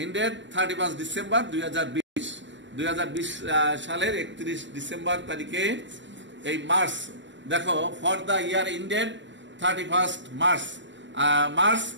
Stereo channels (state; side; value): late; left; 0.53 ms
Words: 31 December 2020 সালের 31 ডিসেম্বর তারিখে। এই মার্চ দেখো for the year ended 31 March